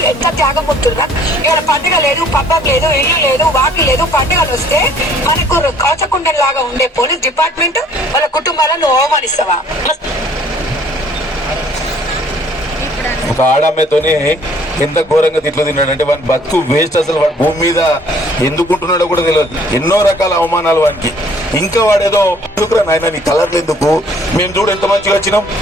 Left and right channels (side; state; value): both; normal; correlation 0.58